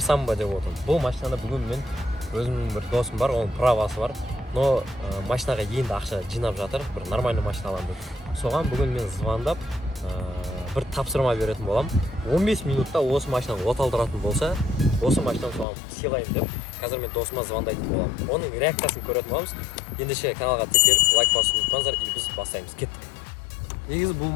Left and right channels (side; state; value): right; drops out; at 15.7 s